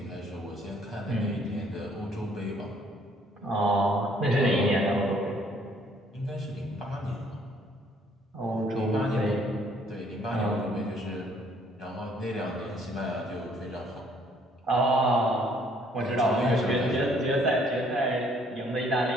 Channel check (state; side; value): normal; both; correlation 0.63